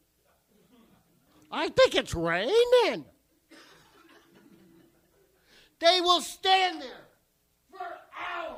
I think it's raining. They will stand there for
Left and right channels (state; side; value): identical; both; correlation 1.00